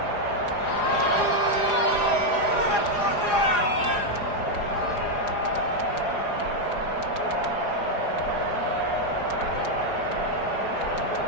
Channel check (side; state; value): right; late; 4.9 ms